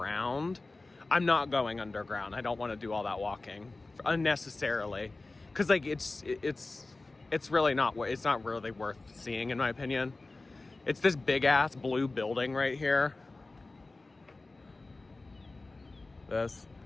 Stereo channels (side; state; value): right; quieter; 3.3 dB